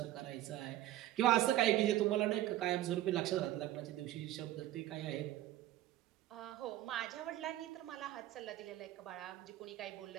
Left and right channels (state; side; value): quieter; left; 14.2 dB